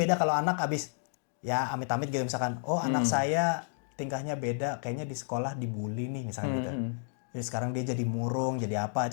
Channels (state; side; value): silent; right; digital silence